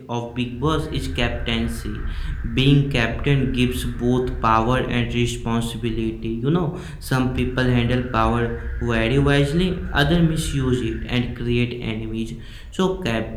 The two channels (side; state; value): both; identical; correlation 1.00